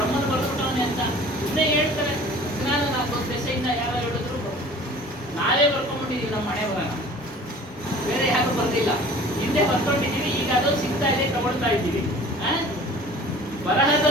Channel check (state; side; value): normal; both; correlation 0.46